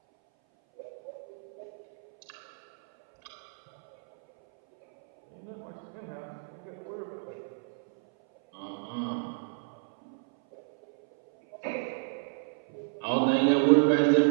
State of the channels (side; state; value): left; silent; 58 dB below the other